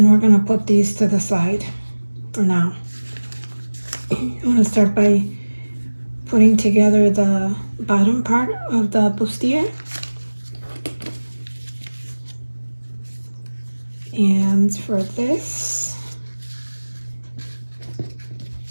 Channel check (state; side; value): inverted; both; correlation -1.00